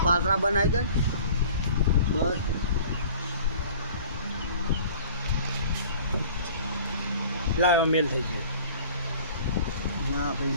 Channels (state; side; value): inverted; both; correlation -0.47